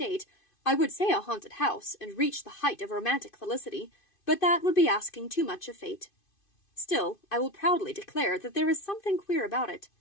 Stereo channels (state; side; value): late; right; 2.5 ms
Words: I would say a haunted house, and reach the height of romantic felicity, but that would be asking too much of fate. Still, I will proudly declare that there is something queer about it.